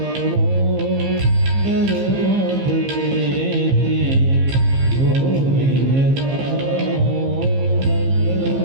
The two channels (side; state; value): left; late; 15 ms